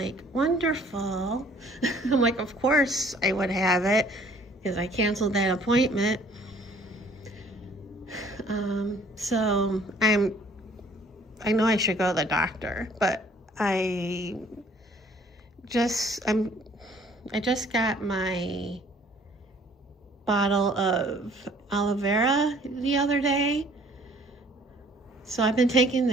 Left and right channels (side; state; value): both; normal; correlation 0.57